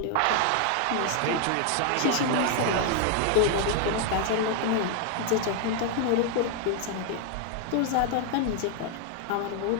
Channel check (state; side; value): different; both; correlation 0.00